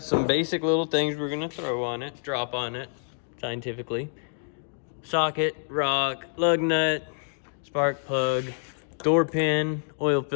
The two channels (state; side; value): silent; right; digital silence